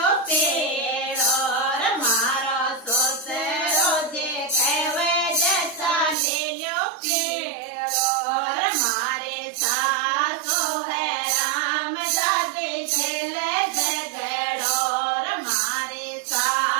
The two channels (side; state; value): left; drops out; at 6.2 s